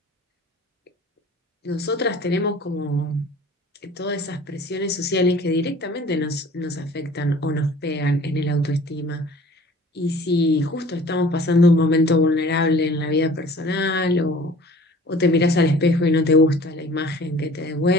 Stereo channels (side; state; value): both; normal; correlation 0.47